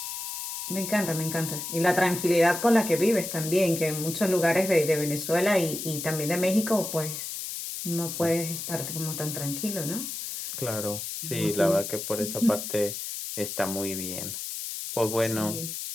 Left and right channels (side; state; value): left; noise; hiss, 6 dB below the sound